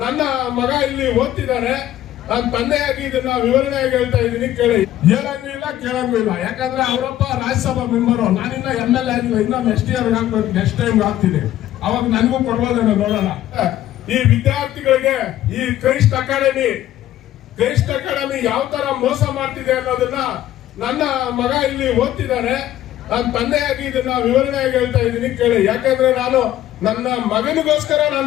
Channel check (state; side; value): quieter; right; 13.0 dB